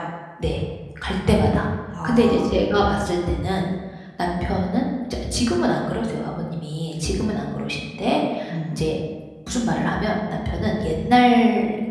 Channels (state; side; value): identical; both; correlation 1.00